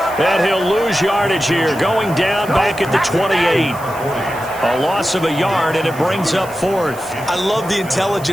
And he'll lose yardage here, going down back at the 28. A loss of a yard, and it brings up 4th. I love the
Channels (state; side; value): noise; right; hiss, 18 dB below the sound